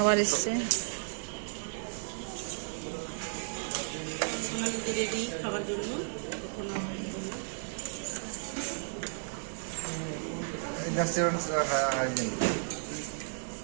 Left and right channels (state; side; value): silent; left; digital silence